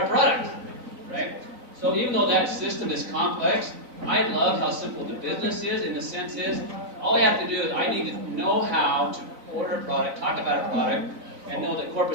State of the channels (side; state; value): left; late; 4.0 ms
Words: product, right? So even though that system is complex, I love how simple the business is. In the sense is, all I have to do is I need to know how to order a product, talk about a product, and know that